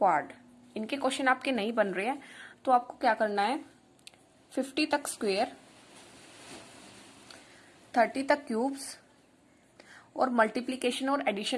इनके क्वेश्चन आपके नहीं बन रहे हैं तो आपको क्या करना है, 50 तक स्क्वायर, 30 तक क्यूब्स और मल्टीप्लीकेशन और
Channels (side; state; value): both; identical; correlation 1.00